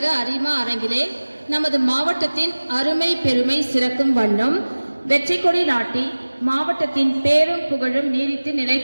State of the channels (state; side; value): inverted; both; correlation -1.00